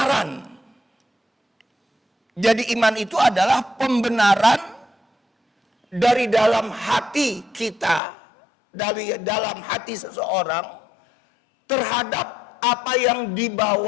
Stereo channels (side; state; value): right; drops out; at 8.0 s